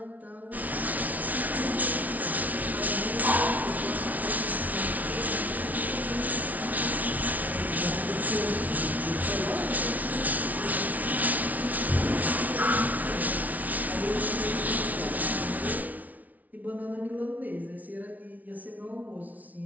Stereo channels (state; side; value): late; left; 0.074 ms